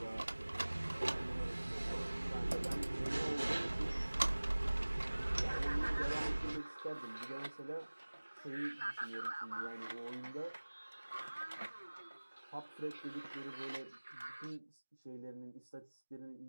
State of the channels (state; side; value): inverted; both; correlation -1.00